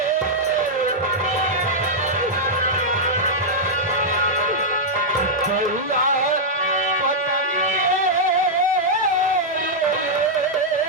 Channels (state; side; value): normal; both; correlation -0.06